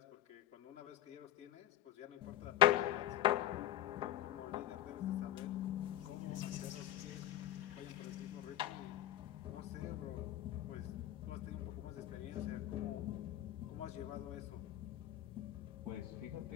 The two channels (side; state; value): right; quieter; 13.0 dB